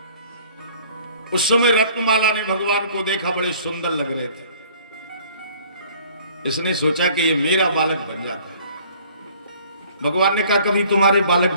उस समय रत्नमाला ने भगवान को देखा, बड़े सुंदर लग रहे थे। इसने सोचा कि ये मेरा बालक बन जाता है। भगवान ने कहा कभी तुम्हारे बालक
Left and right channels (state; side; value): inverted; both; correlation -0.54